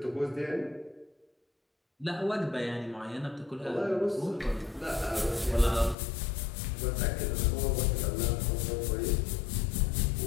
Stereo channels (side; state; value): right; drops out; at 6.0 s